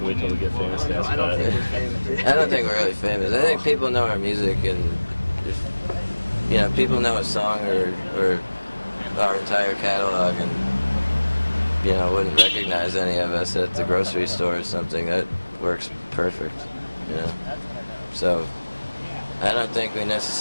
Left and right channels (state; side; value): inverted; both; correlation -1.00